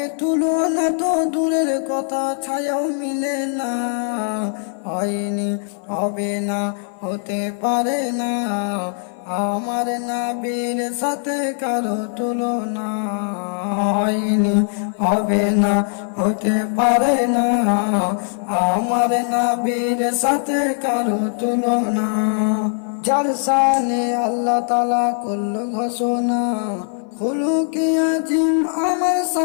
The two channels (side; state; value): right; silent; 58 dB below the other